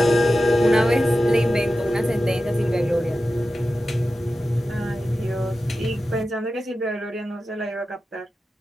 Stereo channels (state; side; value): normal; both; correlation 0.93